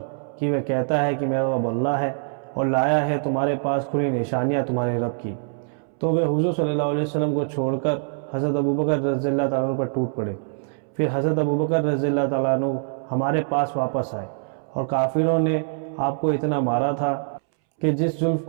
کہ وہ کہتا ہے کہ میرا رب اللہ ہے، اور لایا ہے تمہارے پاس کھلی نشانیاں تمہارے رب کی۔ تو وہ حضور صلی اللہ علیہ وسلم کو چھوڑ کر حضرت ابوبکر رضی اللہ تعالیٰ عنہ پر ٹوٹ پڑے۔ پھر حضرت ابوبکر رضی اللہ تعالیٰ عنہ ہمارے پاس واپس آئے، اور کافروں نے آپ کو اتنا مارا تھا کہ جس زلف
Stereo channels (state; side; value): silent; left; 63 dB below the other